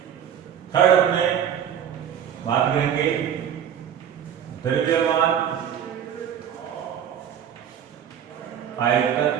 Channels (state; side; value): quieter; left; 9.1 dB